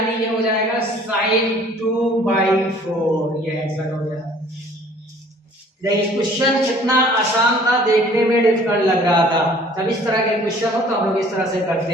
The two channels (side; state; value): both; normal; correlation 0.53